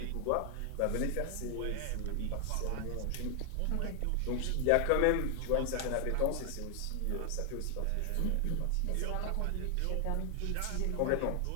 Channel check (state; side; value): different; both; correlation 0.00